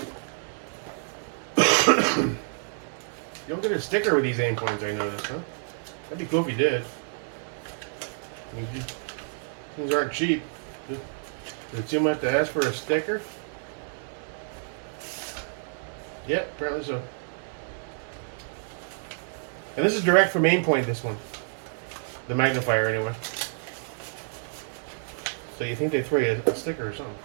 You don't get a sticker with these Aimpoints, I noticed, huh? That'd be cool if you did. I mean, things aren't cheap. Is it too much to ask for a sticker? Yep, apparently so. And this is direct from Aimpoint, this one. The magnifier, anyway. So you think they throw you a sticker or something.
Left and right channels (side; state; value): left; silent; digital silence